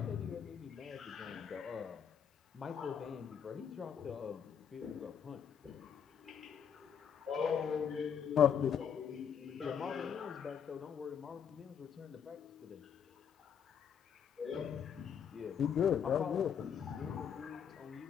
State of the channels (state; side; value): quieter; right; 7.8 dB